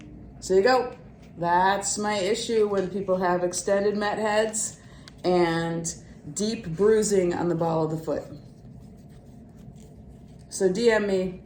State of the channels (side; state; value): both; identical; correlation 1.00